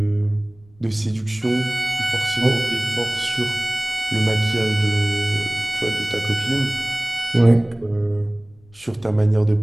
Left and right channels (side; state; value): left; noise; rumble, 30 dB below the sound